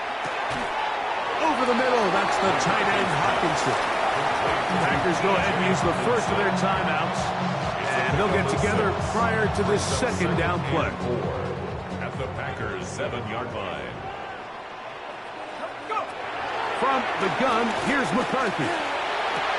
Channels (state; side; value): identical; both; correlation 1.00